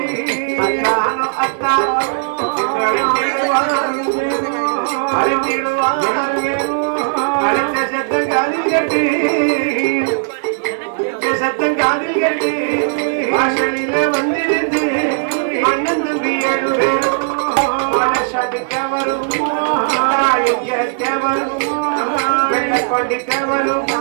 சத்தம் காதில் கட்டு சத்தம் காதில் கட்டு வாசலில வந்திருந்து அண்ணன் தம்பி 7 பேரும் வரும் வெள்ளக்கொண்டிக்கவரும்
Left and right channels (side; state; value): left; silent; 66 dB below the other